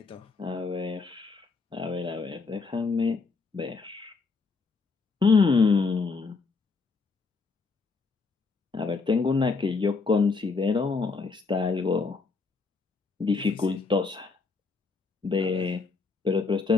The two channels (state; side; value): quieter; right; 4.4 dB